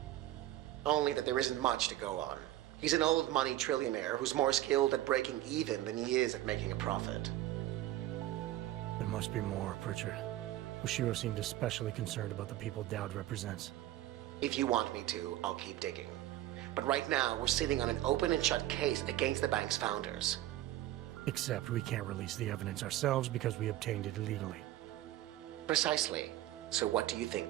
Only that there isn't much to go on. He's an old money trillionaire who's more skilled at breaking even than he is at making a profit. There must be more, Pritchard. Oshiro seemed especially concerned about the people Dowd represents. If you want me to, I'll keep digging. But right now, we're sitting on an open and shut case against the bank's founders. Except we can't release the evidence ourselves because we obtained it illegally. Precisely. So what do you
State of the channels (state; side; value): quieter; left; 14.5 dB